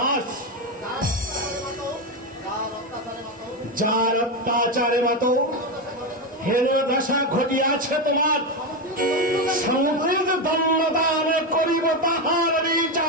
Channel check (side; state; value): both; normal; correlation 0.11